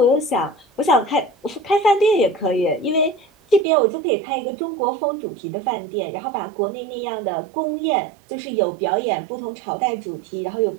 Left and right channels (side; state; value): left; drops out; at 3.7 s